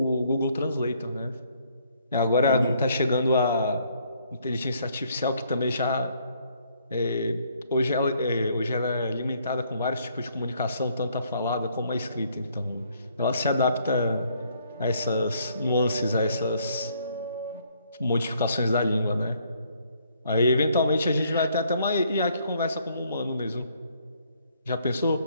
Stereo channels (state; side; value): inverted; both; correlation -0.67